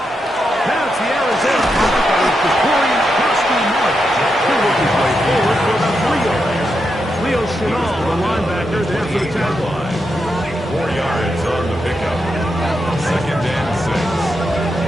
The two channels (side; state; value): both; normal; correlation 0.85